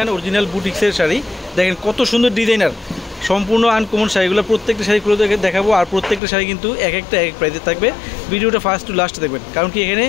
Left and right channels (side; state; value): right; drops out; at 6.2 s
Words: অরিজিনাল বুটিক্সের শাড়ি। দেখেন কত সুন্দর ডিজাইনার, সম্পূর্ণ আনকমন শাড়িগুলো। প্রত্যেকটা শাড়ি খুলে দেখাবো, আর প্রত্যেকটা শাড়ি কিন্তু এক একটা এক প্রাইসে থাকবে। ভিডিওটা ফার্স্ট টু লাস্ট দেখবেন, কারণ কি এখানে